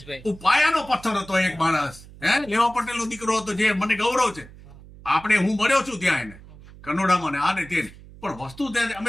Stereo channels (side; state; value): right; noise; hum, 19 dB below the sound